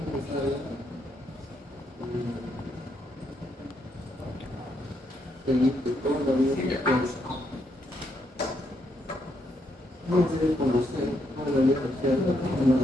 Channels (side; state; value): both; normal; correlation 0.76